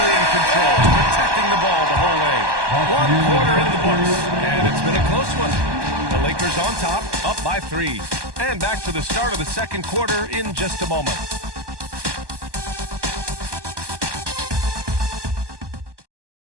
in control, protecting the ball the whole way. 1 quarter in the books, and it's been a close one. The Lakers on top, up by 3. And back to the start of the second quarter in just a moment.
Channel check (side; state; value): left; late; 1.2 ms